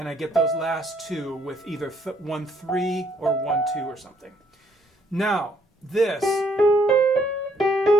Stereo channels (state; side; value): normal; both; correlation 0.68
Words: get those last 2 with either 1, 3 or 1, 2 or something. Now,